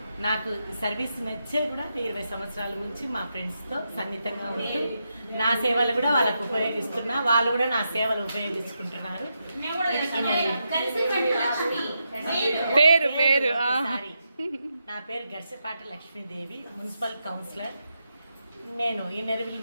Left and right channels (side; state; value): both; inverted; correlation -0.85